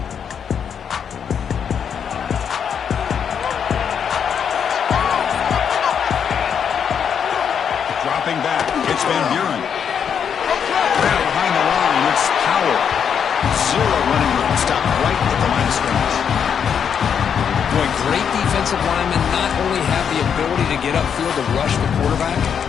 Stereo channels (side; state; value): right; quieter; 7.6 dB